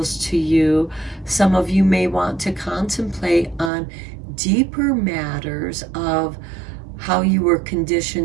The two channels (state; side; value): drops out; left; at 3.7 s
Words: to you. Some of you may want to contemplate on deeper matters of how you were